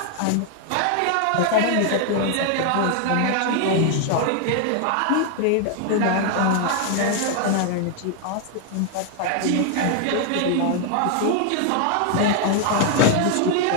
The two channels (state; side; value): different; both; correlation 0.00